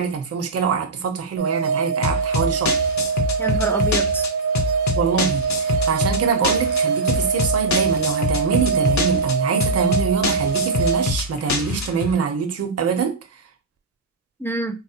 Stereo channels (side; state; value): left; quieter; 3.5 dB